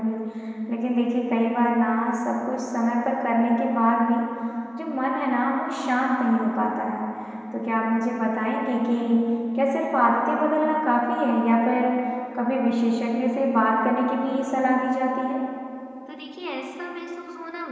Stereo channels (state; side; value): identical; both; correlation 1.00